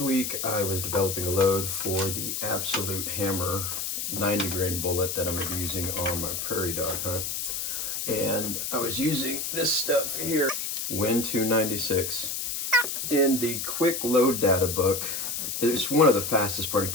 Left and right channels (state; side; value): noise; left; hiss, 3 dB below the sound